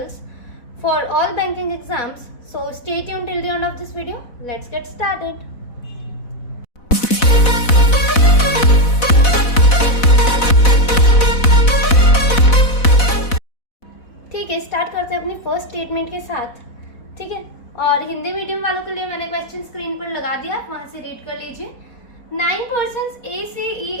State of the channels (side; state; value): right; late; 4.1 ms